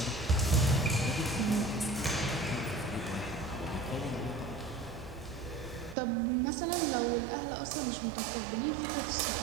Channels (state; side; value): drops out; left; at 6.0 s